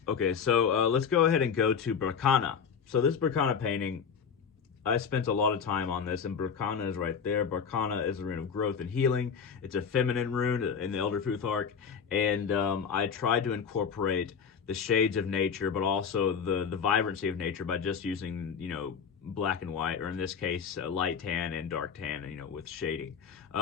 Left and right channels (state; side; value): quieter; right; 6.6 dB